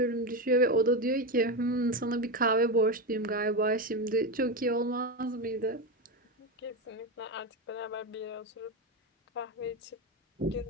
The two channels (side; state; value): both; normal; correlation 0.14